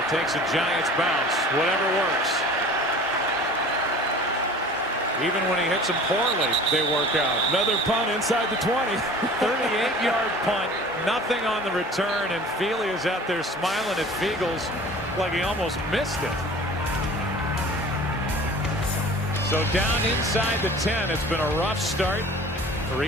takes a Giants bounce. Whatever works. Even when he hits them poorly, they work out. Another punt inside the 20. 38-yard punt. Nothing on the return, and Feely is out there smiling at Fiegels like he almost missed it. So down inside the 10. It's been a rough start for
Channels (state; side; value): normal; both; correlation 0.43